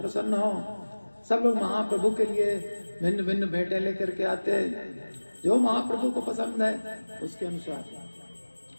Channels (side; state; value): both; inverted; correlation -1.00